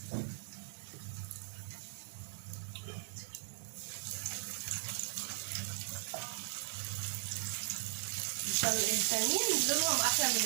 الثانيين دولهم احلى من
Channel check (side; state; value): left; silent; digital silence